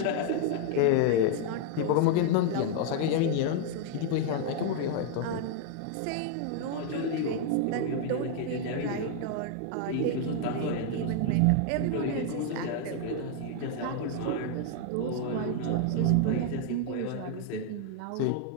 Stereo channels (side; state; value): both; different; correlation 0.00